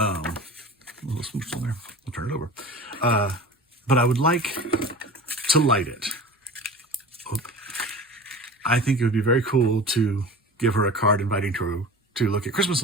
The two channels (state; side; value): normal; both; correlation 0.36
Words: little smooch on there. I'll turn it over. But I would like to light it. I think it would be very cool to give her a card inviting her to look at Christmas